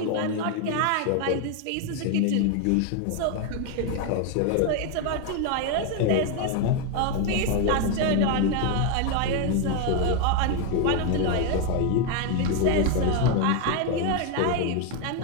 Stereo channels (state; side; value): different; both; correlation 0.01